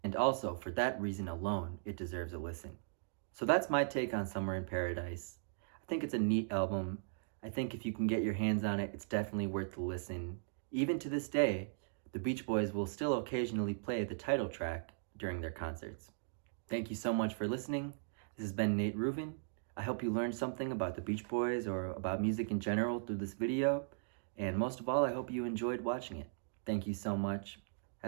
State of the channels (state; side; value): silent; left; digital silence